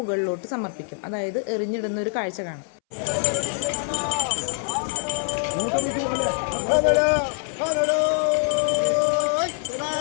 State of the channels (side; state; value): right; silent; 62 dB below the other